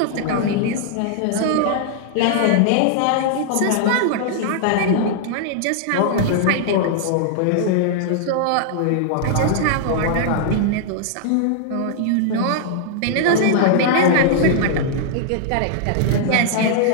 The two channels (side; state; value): both; different; correlation -0.01